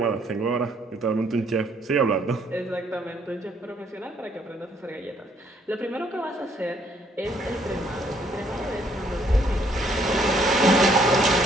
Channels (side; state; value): both; normal; correlation 0.67